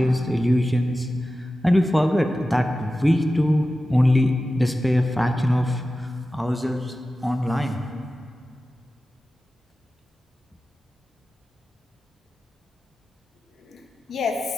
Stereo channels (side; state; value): both; normal; correlation 0.94